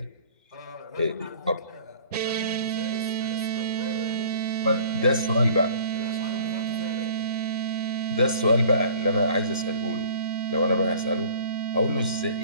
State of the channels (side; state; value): both; inverted; correlation -0.49